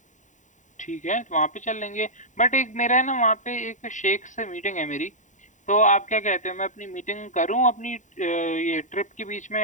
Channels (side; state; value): right; late; 0.36 ms